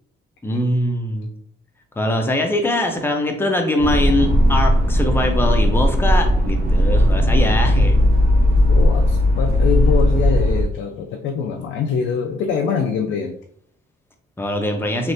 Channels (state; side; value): normal; both; correlation 0.77